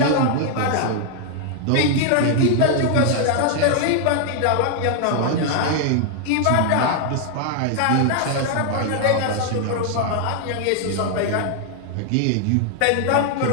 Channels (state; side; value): different; both; correlation 0.00